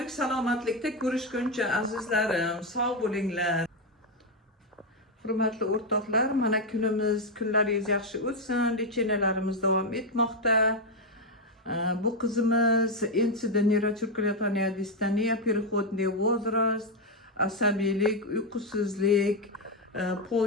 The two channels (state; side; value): normal; both; correlation 0.05